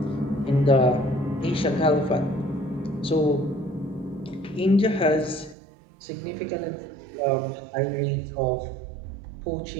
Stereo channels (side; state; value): left; drops out; at 5.6 s